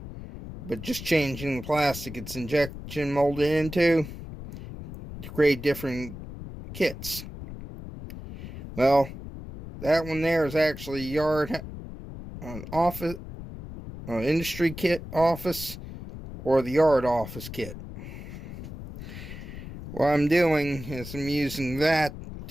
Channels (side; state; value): left; noise; rumble, 11 dB below the sound